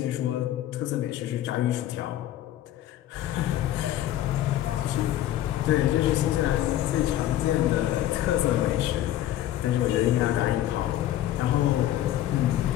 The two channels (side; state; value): right; quieter; 13.1 dB